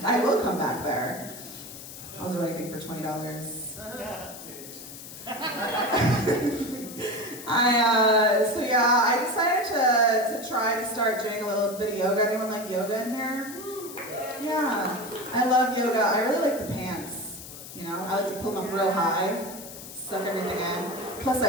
I will come back there. I'll do anything for $20. I decided to try to start doing a little bit of yoga. Anyone like yoga in here? Yeah, I love yoga. I really like the pants. I like to pull them up real high, suck everything in. Plus,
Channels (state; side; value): noise; left; hiss, 13 dB below the sound